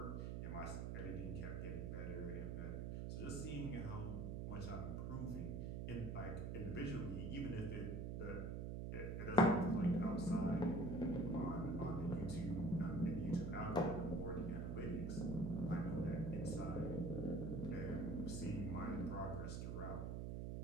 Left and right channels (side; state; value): right; noise; hum, 3 dB below the sound